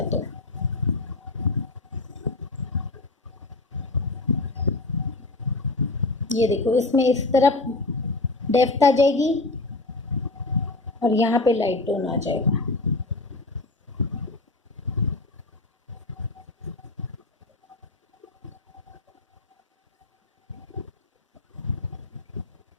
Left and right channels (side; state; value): right; quieter; 3.1 dB